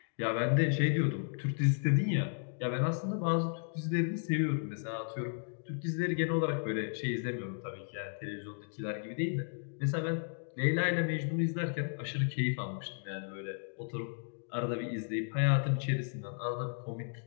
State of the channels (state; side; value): silent; right; digital silence